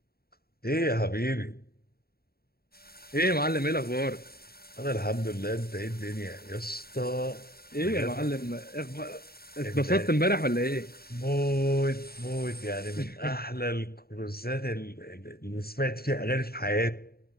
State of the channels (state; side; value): late; right; 0.45 ms